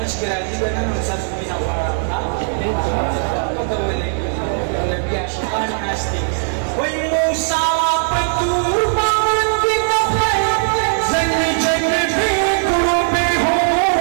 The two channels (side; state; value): left; silent; digital silence